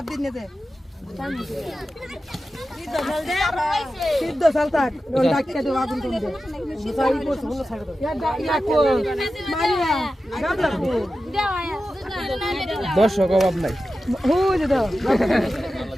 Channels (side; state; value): both; normal; correlation 0.92